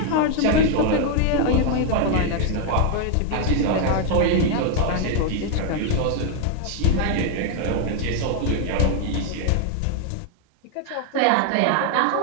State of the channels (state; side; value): different; both; correlation 0.00